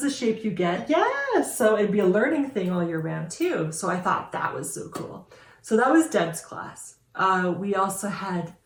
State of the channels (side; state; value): both; identical; correlation 1.00